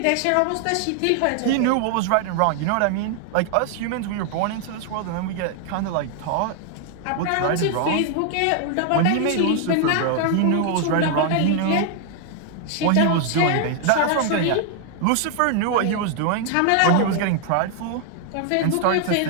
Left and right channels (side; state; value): both; different; correlation 0.00